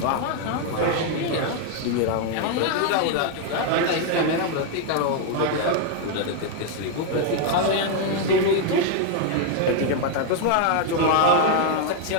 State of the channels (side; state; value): both; different; correlation 0.01